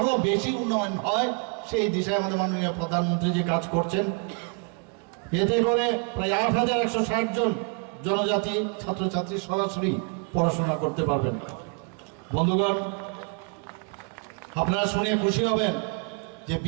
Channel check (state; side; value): quieter; left; 36.9 dB